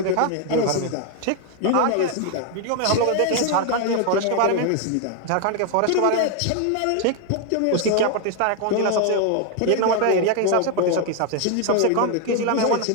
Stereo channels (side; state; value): both; different; correlation 0.00